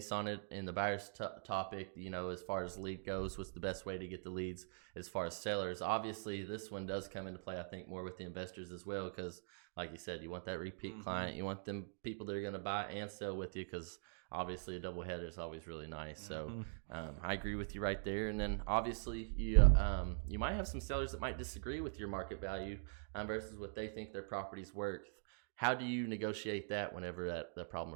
on it in the buyer's topic, as far as lead goes, what's the best way to get the leads as far as sellers. Obviously, this one does come into play, I think, more with the investors as well, because like you said, you want that repeat client. You want them people that are going to buy and sell with you, because obviously a double header is always really nice. So I agree with you right there. And then obviously you might have some sellers that might disagree with your market value versus what they think their property's worth. How do you negotiate that whenever that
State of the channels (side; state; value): left; silent; digital silence